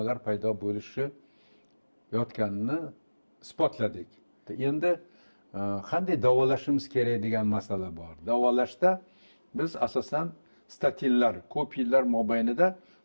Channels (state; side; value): inverted; both; correlation -1.00